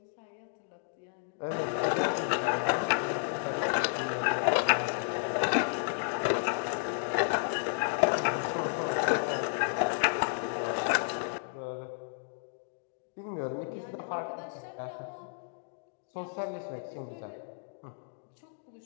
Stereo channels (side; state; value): right; silent; digital silence